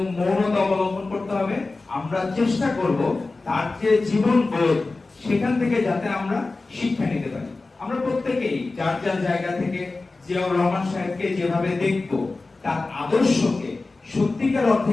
মৌনতা অবলম্বন করতে হবে। আমরা চেষ্টা করব তার যে জীবন বোধ সেখান থেকে যাতে আমরা শিক্ষা নিতে পারি। আমরা প্রত্যেকেই যার যার জায়গা থেকে জিয়াউর রহমান সাহেবকে যেভাবে দেখব, তার আদর্শকে সত্যিকার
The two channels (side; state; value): right; quieter; 3.5 dB